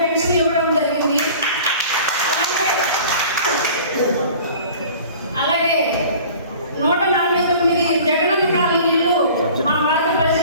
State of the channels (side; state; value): both; inverted; correlation -0.45